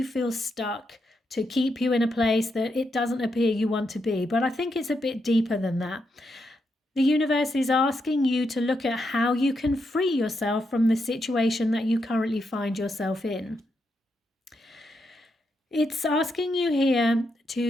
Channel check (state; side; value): normal; both; correlation 0.82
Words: feel stuck, to keep you in a place that it doesn't appear you want to be. But I think it's a bit deeper than that. The universe is asking you to look at how you can free yourself from the situation that you currently find yourself in. It's asking you here